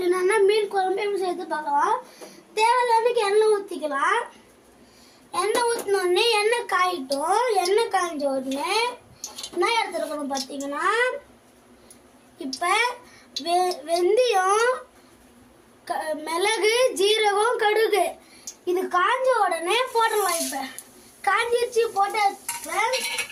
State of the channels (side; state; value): both; identical; correlation 1.00